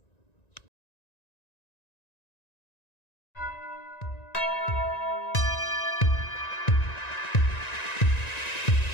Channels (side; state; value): right; late; 1.9 ms